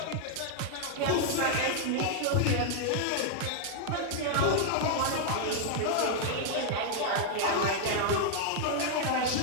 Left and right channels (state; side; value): different; both; correlation 0.00